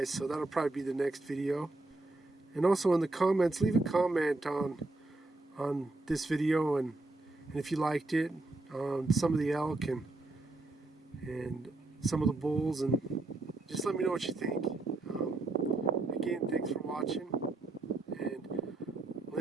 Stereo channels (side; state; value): left; quieter; 3.0 dB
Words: so that'll probably be the next video. And also in the comments, leave a comment on on this video, and if you liked it, some of the elk and some of the bulls, and just let me know what you think. Again, thanks for watching, and